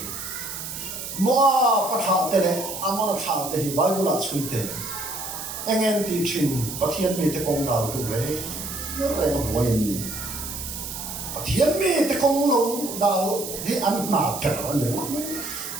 mua bán này anh muốn thà thì bài bút là suy thế anh em đi trình bắt thiên mi te công nào tụ lấy nó lại nó bồi em đi bắt thiên mi te công lâu đào thì ăn nạp trở anh nhớ mấy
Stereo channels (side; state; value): right; noise; hiss, 7 dB below the sound